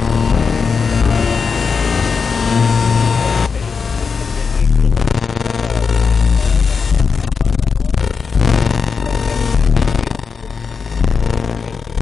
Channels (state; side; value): quieter; right; 5.5 dB